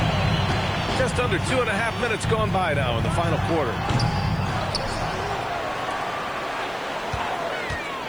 Just under 2.5 minutes gone by now in the final quarter.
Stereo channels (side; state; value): left; noise; hiss, 28 dB below the sound